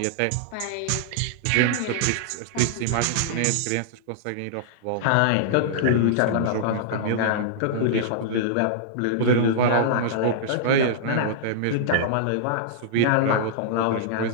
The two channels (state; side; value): different; both; correlation -0.02